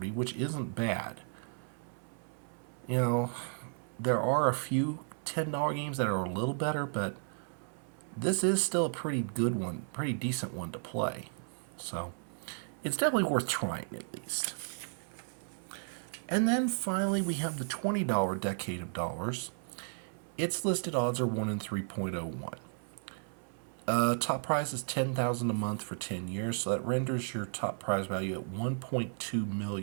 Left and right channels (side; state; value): left; silent; 55 dB below the other